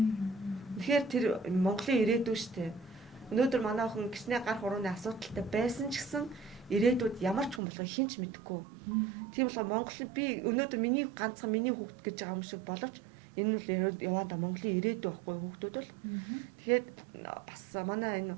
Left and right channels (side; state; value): left; drops out; at 7.6 s